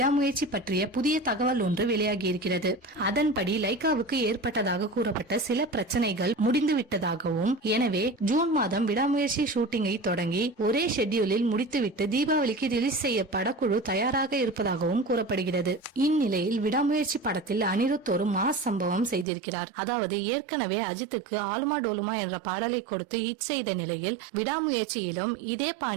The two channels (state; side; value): drops out; left; at 19.2 s